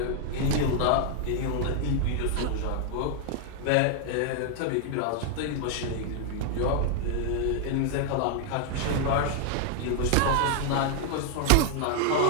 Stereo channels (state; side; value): different; both; correlation 0.00